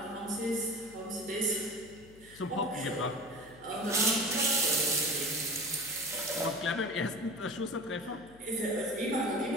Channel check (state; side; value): noise; left; hum, 22 dB below the sound